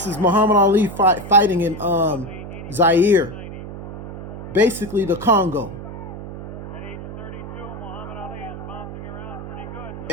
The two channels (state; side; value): noise; right; hum, 10 dB below the sound